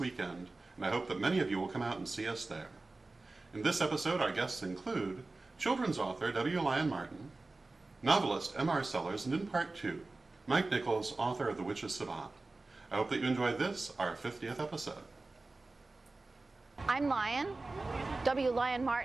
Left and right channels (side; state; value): left; quieter; 3.3 dB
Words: and I hope that many of you will come out and see us there. In this episode, our guests include children's author Lyon Martin, novelist M.R. Sellars, and in part 2, Mike Nichols, author of The Witch's Savant. I hope that you enjoyed this, our 50th episode. I'm Lyon, Lyon